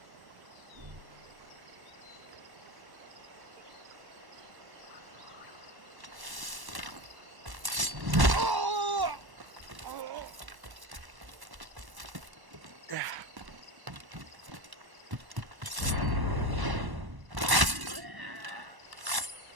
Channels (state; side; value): late; left; 1.1 ms